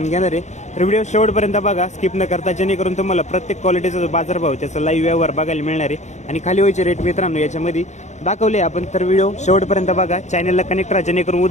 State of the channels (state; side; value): late; right; 0.34 ms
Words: घेणार आहे. तर व्हिडिओ शेवटपर्यंत बघा, स्किप न करता, जेणेकरून तुम्हाला प्रत्येक क्वालिटीचा जो बाजारभाव त्याचा लाईव्ह व्यवहार बघायला मिळणार आहे. आणि खाली व्हायचे रेट मित्रांनो याच्यामध्ये दाखवले आपण. तर व्हिडिओ शेवटपर्यंत बघा, चॅनलला कनेक्ट राहा, जेणेकरून